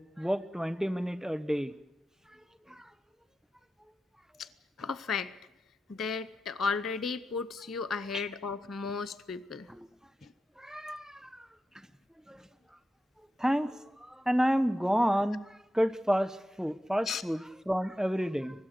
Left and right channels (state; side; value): normal; both; correlation 0.90